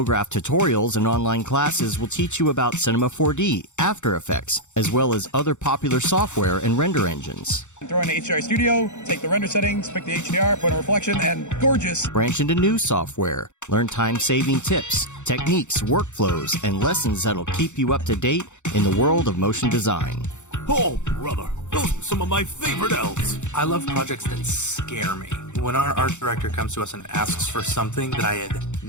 tutorials and online classes will teach you about Cinema 4D, After Effects, as well as other popular software and render engines. Throw in the HDR Studio, take the render settings, pick the HDR, put a reflection, and gorgeous. Branch into new software. Learn time-saving tips, techniques, workflows, and lessons that'll keep you up to date in the world of motion design. Oh, brother, those are some of my favorite elves. I love projects that scare me. When our art director comes to us and asks for something that I had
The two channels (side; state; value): right; late; 0.84 ms